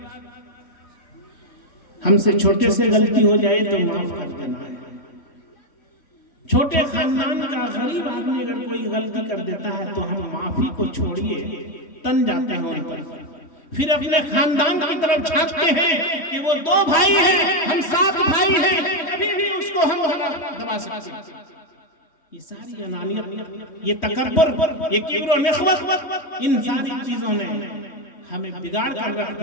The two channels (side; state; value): right; late; 3.1 ms